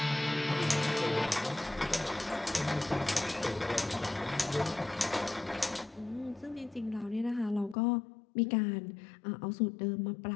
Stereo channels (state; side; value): drops out; right; at 7.8 s